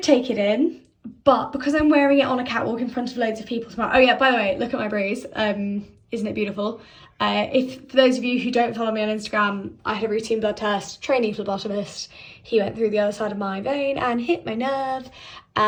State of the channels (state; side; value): identical; both; correlation 1.00